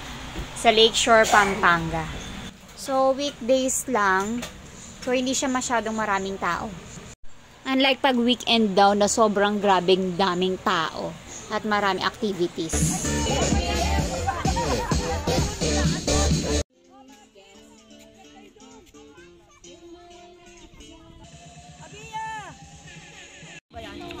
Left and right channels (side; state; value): both; identical; correlation 1.00